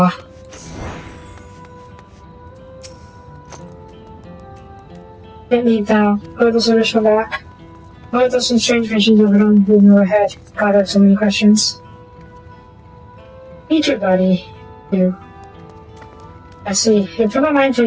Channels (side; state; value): both; identical; correlation 1.00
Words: Get me down. Go to the service from back. What are some strange visions of it on in your head? God, I have so many questions. Meet your buddy. You. I see. You put my mind to